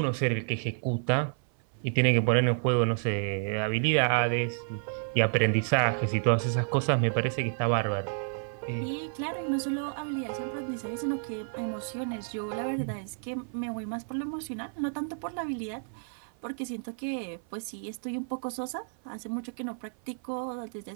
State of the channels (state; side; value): silent; left; 56 dB below the other